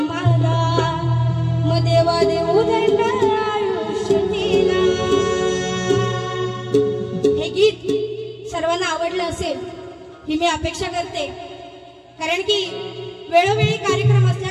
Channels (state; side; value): identical; both; correlation 1.00